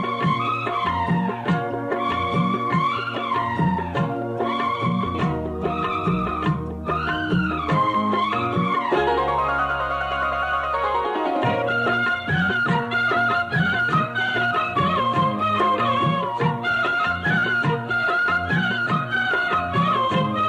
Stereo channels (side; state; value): both; identical; correlation 1.00